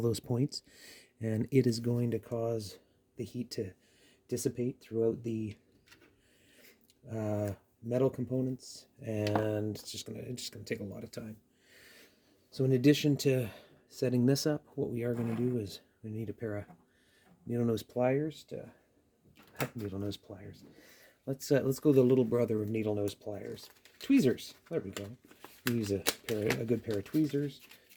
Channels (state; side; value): identical; both; correlation 1.00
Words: those points, and it is going to cause the heat to dissipate throughout the metal components, and it's just gonna take a lot of time. So in addition to setting this up, what we are going to do is we need a pair of needle nose pliers to needle nose pliers. Let's go the little brother of needle nose pliers, tweezers. There we go. We use a good pair of tweezers